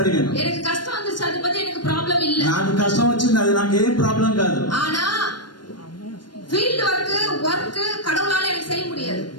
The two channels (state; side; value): late; right; 0.71 ms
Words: అడిగాను. எனக்கு கஷ்டம் வந்துச்சு, அதை பத்தி எனக்கு ப்ராப்ளம் இல்ல. నాకు కష్టం వచ్చింది, అది నాకు ఏం ప్రాబ్లం కాదు. ஆனா ఫీల్డ్ వర్క్ கடவுளால எனக்கு செய்ய முடியாது.